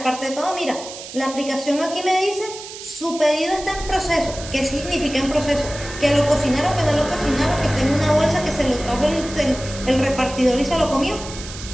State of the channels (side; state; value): right; noise; hiss, 12 dB below the sound